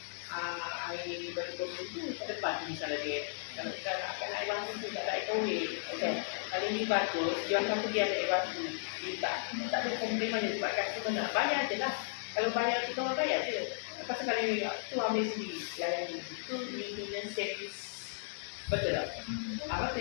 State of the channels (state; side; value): silent; right; digital silence